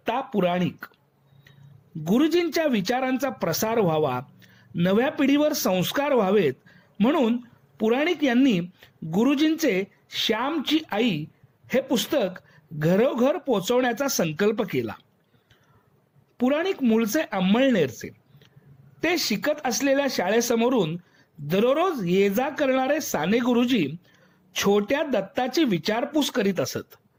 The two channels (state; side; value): identical; both; correlation 1.00